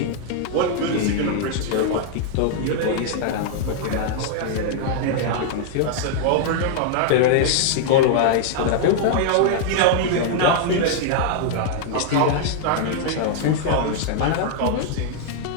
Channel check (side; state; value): both; different; correlation -0.01